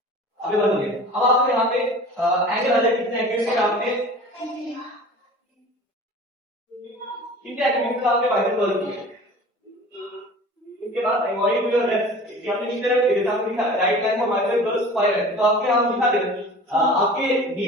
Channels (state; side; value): normal; both; correlation 0.41